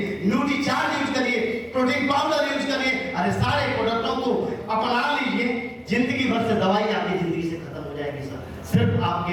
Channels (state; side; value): identical; both; correlation 1.00